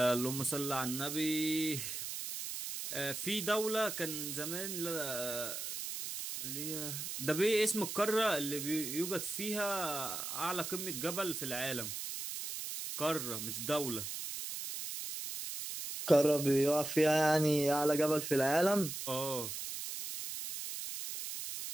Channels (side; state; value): right; noise; hiss, 5 dB below the sound